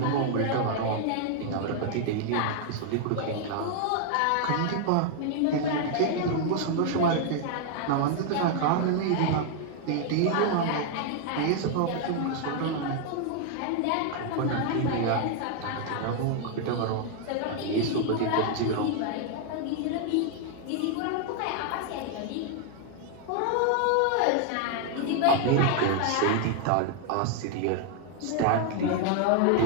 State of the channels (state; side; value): different; both; correlation 0.00